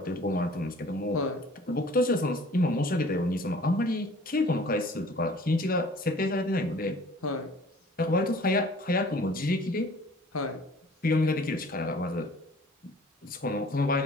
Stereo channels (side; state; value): both; normal; correlation 0.50